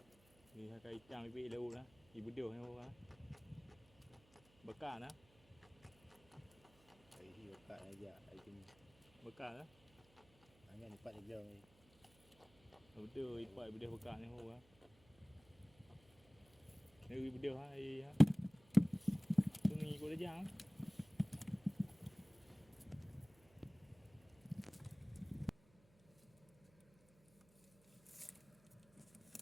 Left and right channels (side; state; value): right; noise; hum, 29 dB below the sound